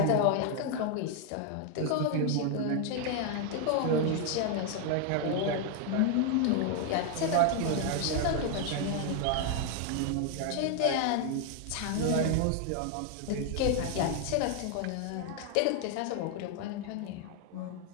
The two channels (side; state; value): both; different; correlation 0.01